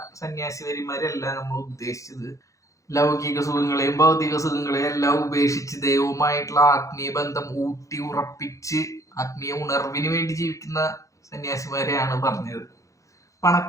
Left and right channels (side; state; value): right; late; 0.15 ms